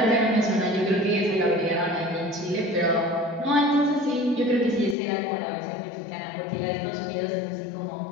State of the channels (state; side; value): drops out; right; at 5.0 s